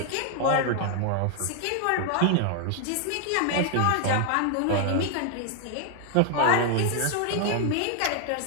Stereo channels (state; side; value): different; both; correlation 0.00